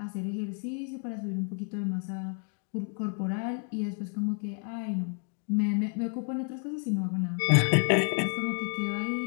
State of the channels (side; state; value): right; quieter; 36.4 dB